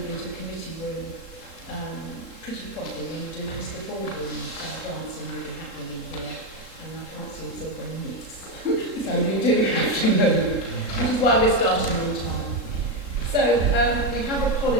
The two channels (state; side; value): late; left; 3.7 ms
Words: into committee room pretty properly because the boardroom dancing will be happening in here, and I can't see the silver in this. So we do have to move. This is why we're starting on time. So we have